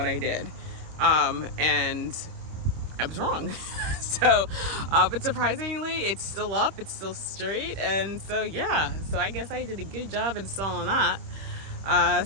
I did, and I was wrong. So, but surprisingly, it's still up, it's still straight, and so yeah. So I guess I did a good job installing that.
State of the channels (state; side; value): late; left; 26 ms